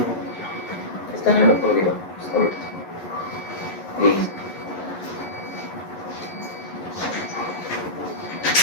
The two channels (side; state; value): right; late; 11 ms